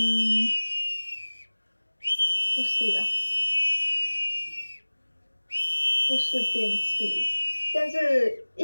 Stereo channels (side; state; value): both; inverted; correlation -1.00